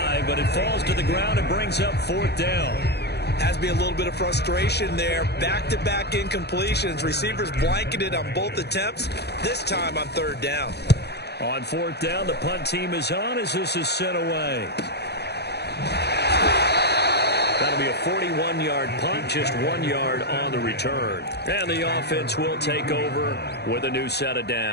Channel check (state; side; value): late; right; 0.48 ms